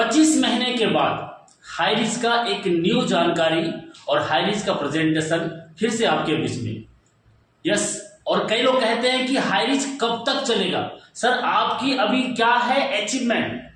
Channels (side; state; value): both; identical; correlation 1.00